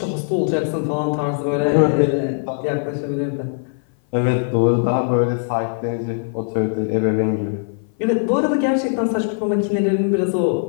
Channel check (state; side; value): silent; right; 57 dB below the other